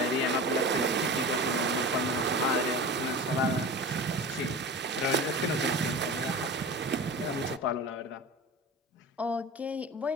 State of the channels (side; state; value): both; normal; correlation 0.32